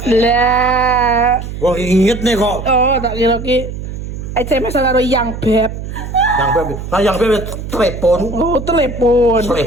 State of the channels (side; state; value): right; noise; hum, 8 dB below the sound